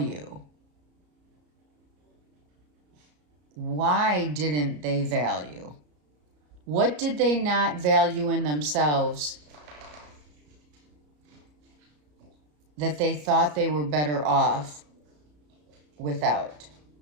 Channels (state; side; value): late; left; 33 ms